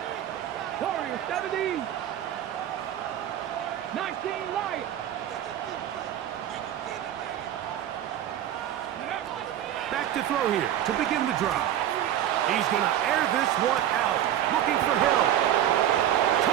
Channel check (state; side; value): quieter; left; 11.2 dB